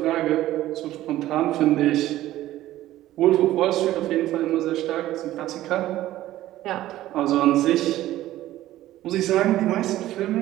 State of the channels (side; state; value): left; quieter; 14.7 dB